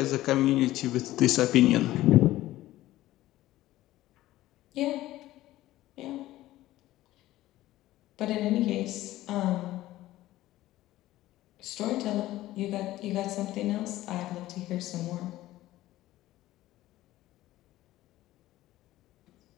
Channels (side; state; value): right; quieter; 15.7 dB